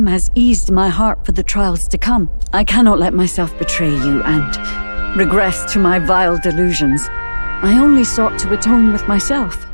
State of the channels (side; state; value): both; inverted; correlation -1.00